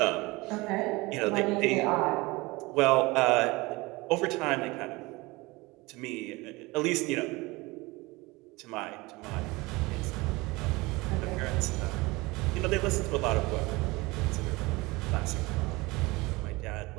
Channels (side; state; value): left; quieter; 22.8 dB